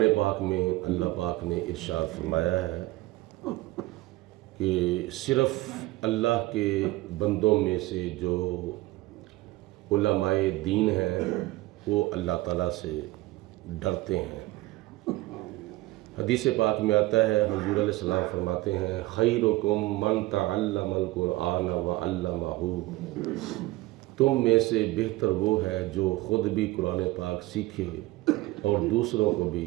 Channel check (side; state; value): left; quieter; 19.1 dB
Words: پاک میں اللہ پاک نے ارشاد فرمایا ہے کہ صرف اللہ کے بندوں میں سے جو علماء دین ہیں وہ اللہ تعالیٰ سے ڈرتے ہیں۔ حدیث پاک میں آتا ہے، حضور علیہ السلام فرماتے ہیں خیرکم من تعلم القرآن وعلمہ، تم میں سے بہتر وہ ہے جو خود بھی قرآن پاک سیکھے اور دوسروں کو بھی